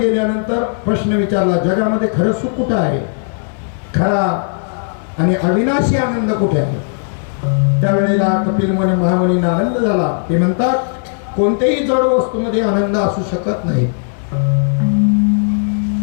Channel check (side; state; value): right; silent; 69 dB below the other